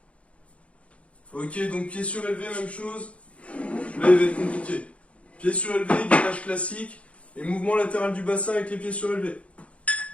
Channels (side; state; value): right; late; 0.063 ms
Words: Ok, donc pied surélevé, même chose. Là, il va être compliqué. Pied surélevé, gainage classique. Et mouvement latéral du bassin avec les pieds surélevés.